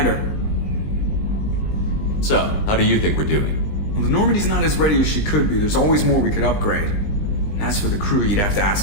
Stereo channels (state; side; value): late; right; 20 ms